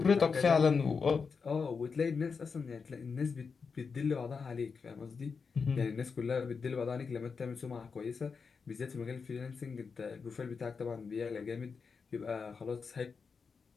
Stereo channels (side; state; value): right; quieter; 5.4 dB